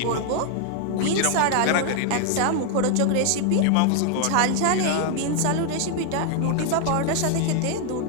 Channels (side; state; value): both; different; correlation 0.00